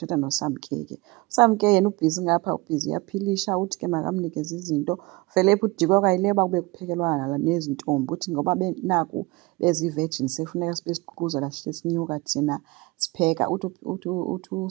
noSamke ke. uSamke yena ubhizi ngapha ubhizi uyaphilisha uthi ke makamnikeze izinto. Vele phi uDikwe kwayileba kube kuphekelwa nezintombi uthi ngoba naku bezi-virgin sekufuneka sibe siququzela sihle sinyuka thina sipheka. Uthi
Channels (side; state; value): left; quieter; 23.3 dB